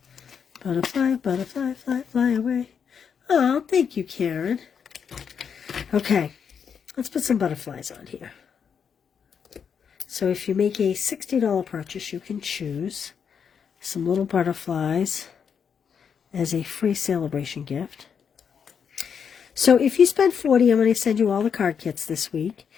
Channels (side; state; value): right; quieter; 7.0 dB